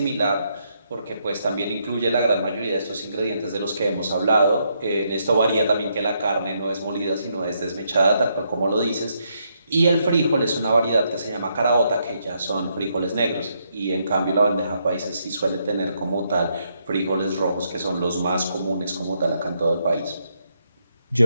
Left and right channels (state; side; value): inverted; both; correlation -0.77